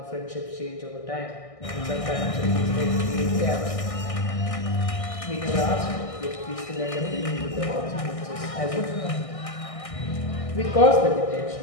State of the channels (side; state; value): right; late; 1.6 ms